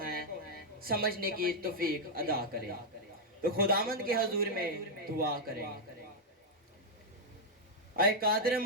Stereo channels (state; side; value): normal; both; correlation -0.02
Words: ہیں سمجھنے کی توفیق عطا کرے۔ تو خداوند کے حضور میں دعا کریں۔ اے قادر